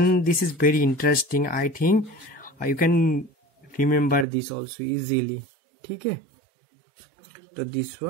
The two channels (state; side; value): drops out; left; at 4.2 s